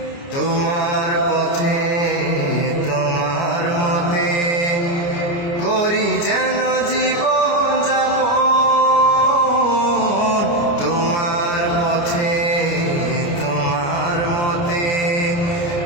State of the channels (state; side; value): late; right; 29 ms